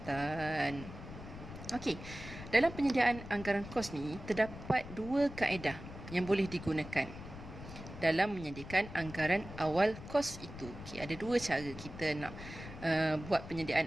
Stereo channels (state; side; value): noise; left; rumble, 12 dB below the sound